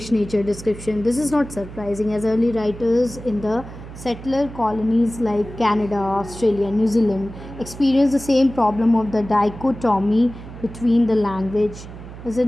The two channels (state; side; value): noise; right; hum, 14 dB below the sound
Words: nature description. This is not surprising, as early writers in the settler colonies like Canada, Australia, New Zealand experienced the same problem of the dichotomy between the language,